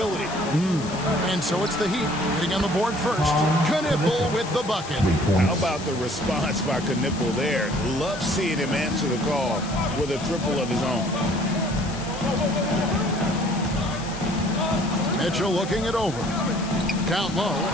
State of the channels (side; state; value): left; noise; hiss, 14 dB below the sound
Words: And so it's the Heat getting on the board first. Knipple with the bucket. How about the response by Knipple there? Love seeing him answer the call with a triple of his own. Mitchell looking it over. Down low.